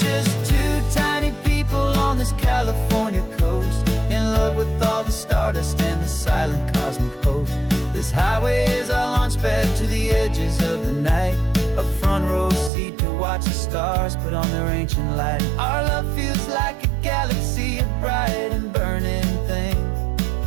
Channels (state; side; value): drops out; left; at 12.7 s